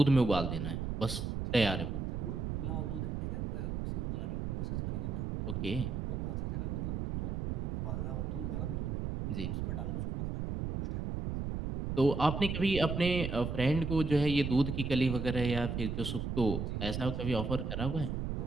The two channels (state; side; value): noise; right; rumble, 2 dB below the sound